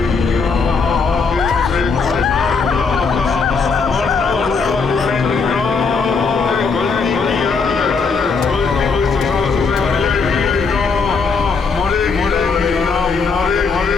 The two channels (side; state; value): right; quieter; 4.9 dB